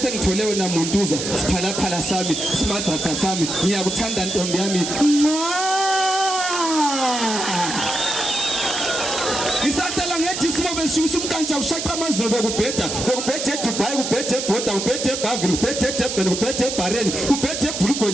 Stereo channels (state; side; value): noise; right; hiss, 4 dB below the sound